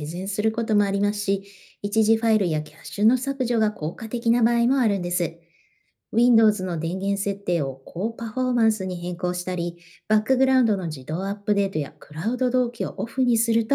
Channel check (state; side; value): identical; both; correlation 1.00